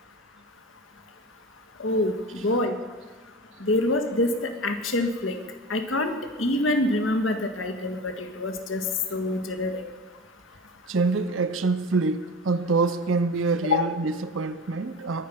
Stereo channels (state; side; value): normal; both; correlation 0.30